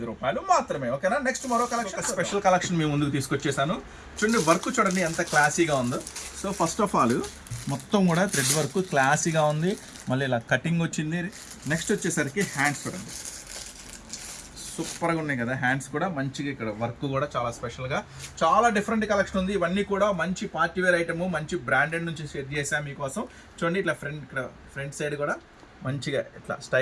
రూపాయలు మాత్రమే. ఓకేనా, నెక్స్ట్ మరో కలెక్షన్, స్పెషల్ కలెక్షన్ మీ ముందుకు తీసుకొచ్చేసాను. చూడండి వర్క్ చూడండి ఎంత క్లాసీగా ఉందో. సో ఫస్ట్ ఆఫ్ ఆల్ మొత్తం కూడా థ్రెడ్ వర్క్ క్లాసీగా ఉంది, మళ్ళీ ఇలా కటింగ్ వచ్చింది. నెక్స్ట్ వచ్చేసరికి హ్యాండ్స్ చూడండి, సూపర్గా ఉన్నాయి కదా హ్యాండ్స్ కూడా మంచిగా. ఇక్కడ వర్క్ కూడా చాలా స్పెషల్గా, చాలా డిఫరెంట్ కలెక్షన్ ఉంది. ఇవన్నీ కూడా మంచి పార్టీ వేర్ ఐటమ్, మంచి బ్రాండెడ్ నుంచి సెట్ చేసాం మీకోసం. చూడండి ఇట్లా ఫ్రంట్ సైడ్ కూడా మంచిగా ఇట్లా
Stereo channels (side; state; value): both; identical; correlation 1.00